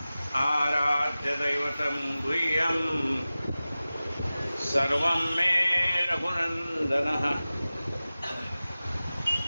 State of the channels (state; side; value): inverted; both; correlation -0.96